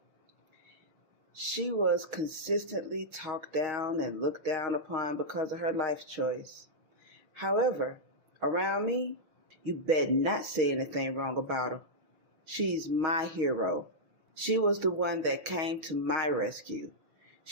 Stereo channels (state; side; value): late; left; 6.3 ms